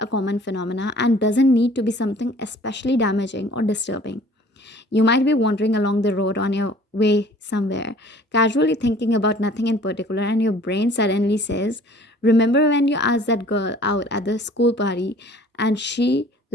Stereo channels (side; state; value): both; normal; correlation 0.51